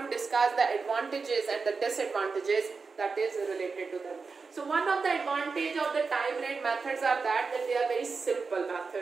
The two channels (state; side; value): quieter; left; 4.7 dB